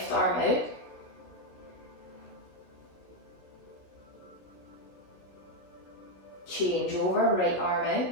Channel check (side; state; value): right; late; 16 ms